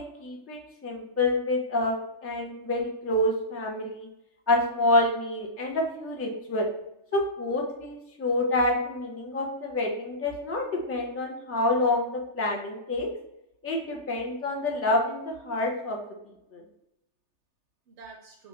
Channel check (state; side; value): late; left; 3.3 ms